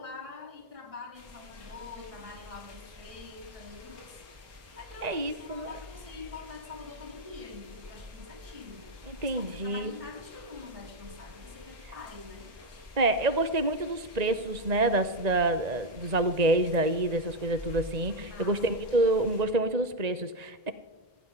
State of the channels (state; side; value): late; left; 1.9 ms